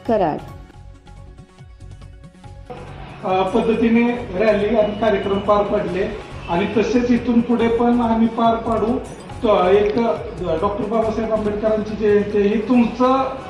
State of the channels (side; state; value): both; identical; correlation 1.00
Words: कराड। पद्धतीने रॅली आणि कार्यक्रम पार पडले आणि तसेच इथून पुढे पण आम्ही पार पाडू। एक डॉक्टर बाबासाहेब आंबेडकरांची जयंती ही तुमचं